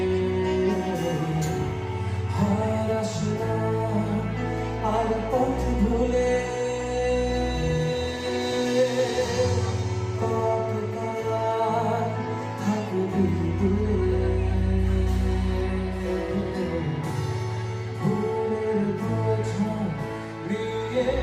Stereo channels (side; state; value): both; identical; correlation 1.00